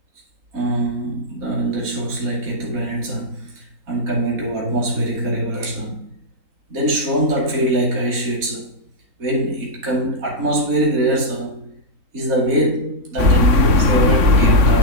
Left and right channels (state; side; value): late; left; 3.8 ms